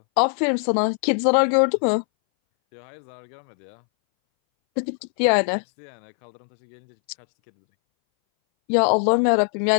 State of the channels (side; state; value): right; silent; 62 dB below the other